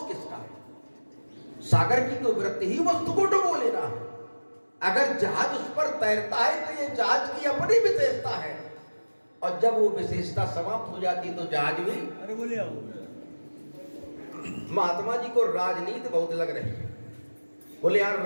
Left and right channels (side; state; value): both; inverted; correlation -1.00